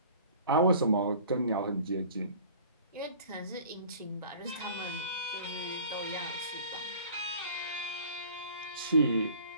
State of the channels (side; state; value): both; inverted; correlation -0.47